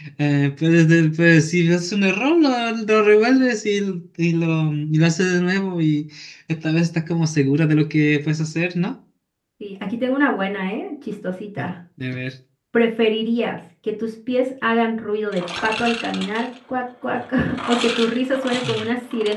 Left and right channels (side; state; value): both; identical; correlation 1.00